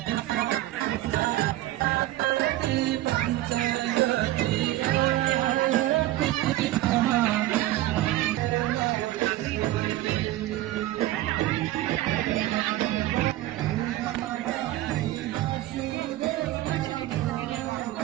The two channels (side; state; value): left; quieter; 15.7 dB